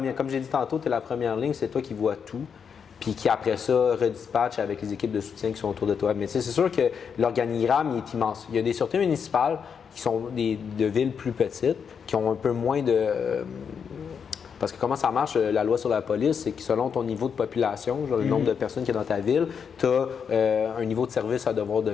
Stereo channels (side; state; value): right; quieter; 6.8 dB